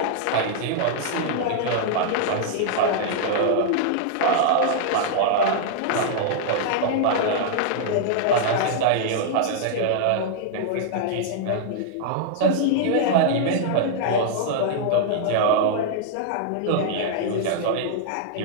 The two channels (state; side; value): different; both; correlation -0.01